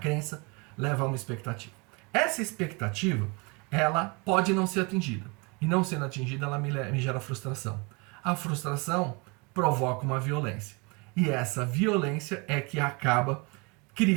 leva a uma expectativa. Essa expectativa, ela pode não ser atingida. E não sendo atingida, ela me gera frustração. A frustração provoca uma violência. E essa violência é que acaba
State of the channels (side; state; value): left; quieter; 29.4 dB